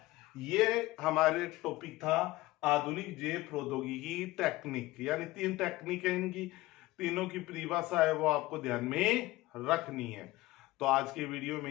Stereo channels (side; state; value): right; quieter; 18.8 dB